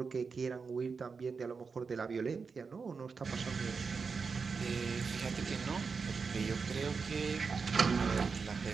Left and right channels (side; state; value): left; quieter; 5.1 dB